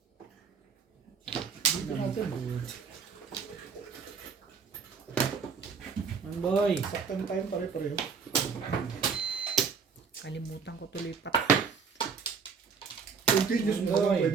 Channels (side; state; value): left; quieter; 5.9 dB